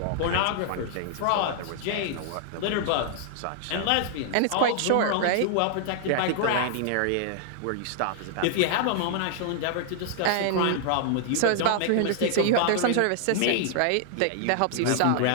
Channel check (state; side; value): different; both; correlation -0.01